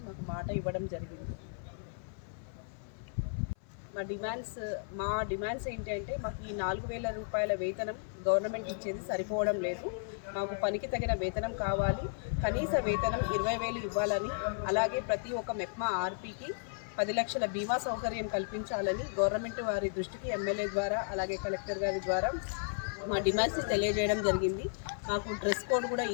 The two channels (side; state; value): right; silent; 55 dB below the other